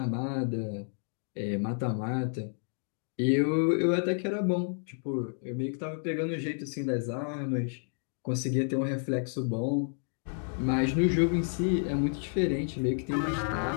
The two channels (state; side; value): silent; right; 56 dB below the other